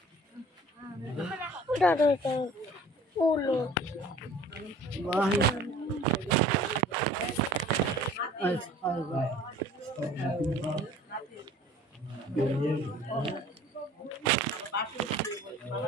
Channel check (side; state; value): both; normal; correlation 0.49